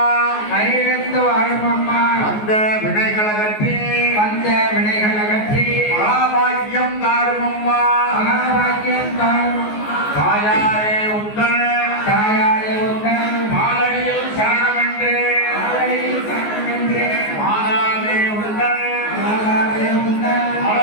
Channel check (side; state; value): right; late; 14 ms